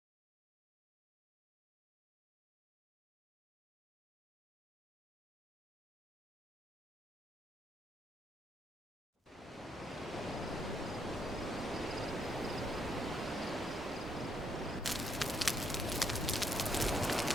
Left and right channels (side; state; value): both; normal; correlation 0.74